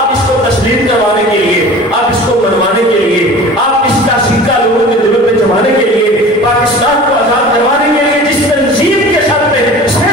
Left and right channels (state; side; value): normal; both; correlation 0.40